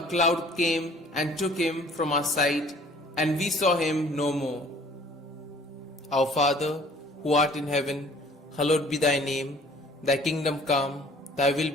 cloud came and took him from our sight, and we saw him no more. Our Father, who art in heaven, hallowed be thy name. Thy kingdom come, thy will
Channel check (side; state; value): both; normal; correlation 0.54